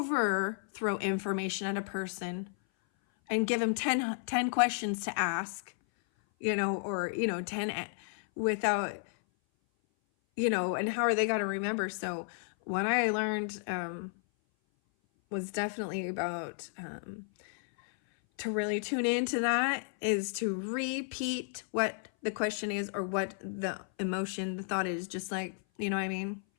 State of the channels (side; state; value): right; silent; 56 dB below the other